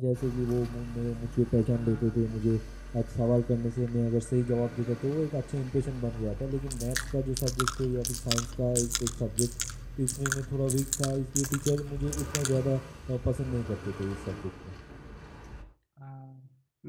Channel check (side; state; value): both; identical; correlation 1.00